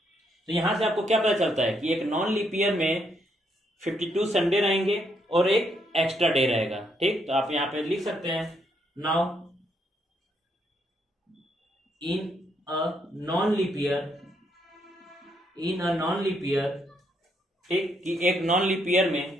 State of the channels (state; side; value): normal; both; correlation 0.75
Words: तो यहां से आपको क्या पता चलता है कि एक नॉन लीप ईयर में 52 संडे रहेंगे और एक एक्स्ट्रा डे रहेगा। ठीक, तो आप यहाँ पे लिख सकते हैं now in a non leap year, ठीक, कि एक नॉन लीप ईयर